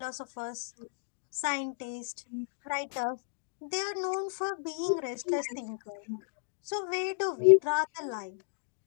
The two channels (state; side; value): silent; right; digital silence